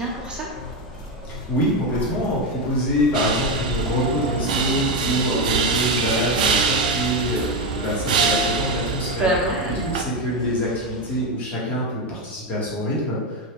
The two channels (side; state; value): both; normal; correlation 0.10